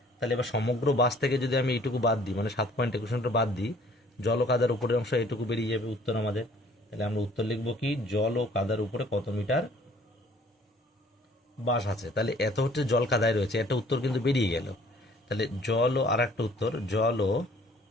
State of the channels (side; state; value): both; normal; correlation 0.56